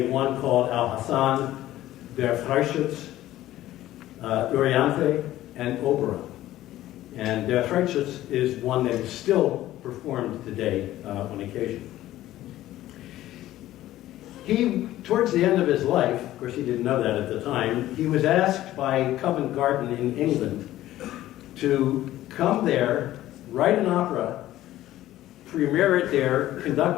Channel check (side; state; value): right; quieter; 14.5 dB